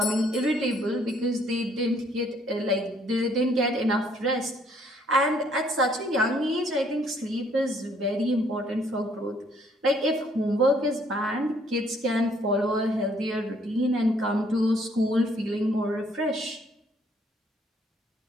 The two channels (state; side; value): normal; both; correlation 0.65